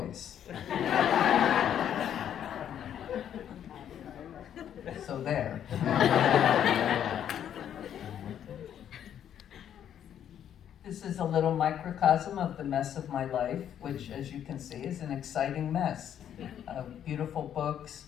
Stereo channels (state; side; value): quieter; right; 9.7 dB